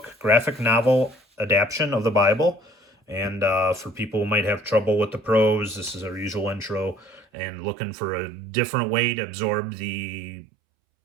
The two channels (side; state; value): left; drops out; at 7.2 s